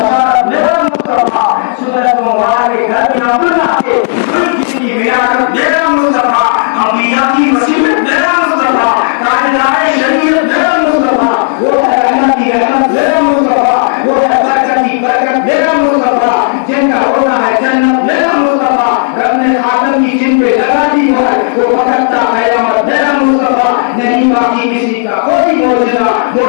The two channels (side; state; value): right; silent; 69 dB below the other